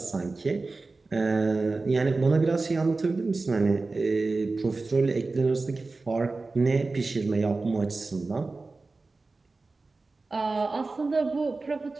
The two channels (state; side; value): quieter; left; 3.6 dB